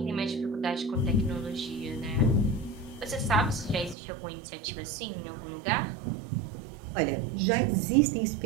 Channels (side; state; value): left; drops out; at 4.0 s